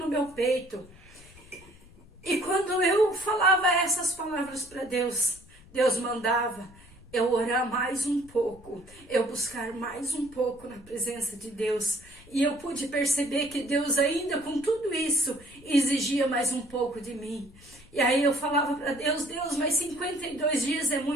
meu peito. E quando eu falava essas palavras para Deus, Deus mandava eu orar mais um pouco, eu buscar mais um pouco na presença de Deus. E eu pude perceber que Deus ainda com tudo isso exigia mais um pouco de mim. E aí eu falava para Deus, Deus, mas 52 dias é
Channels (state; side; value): noise; left; rumble, 23 dB below the sound